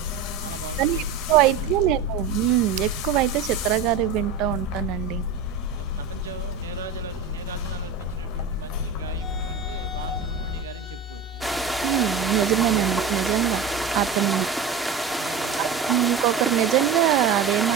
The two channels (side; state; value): left; quieter; 5.8 dB